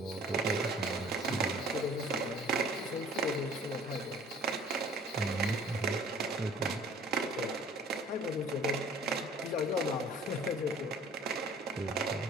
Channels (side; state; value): both; normal; correlation 0.52